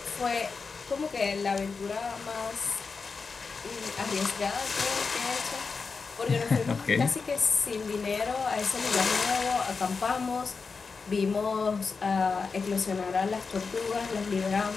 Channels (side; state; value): right; quieter; 4.8 dB